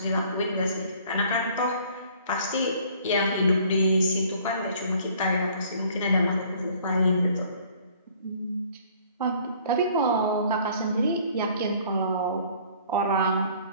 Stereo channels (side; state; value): both; inverted; correlation -0.55